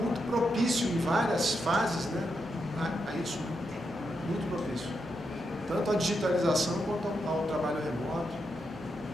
propício em várias fases, né, a isso, muito propício. Tanto a digitalização quanto ao trabalho remoto.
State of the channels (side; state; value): both; normal; correlation 0.84